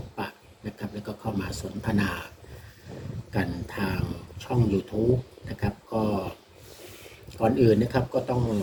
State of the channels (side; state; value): both; identical; correlation 1.00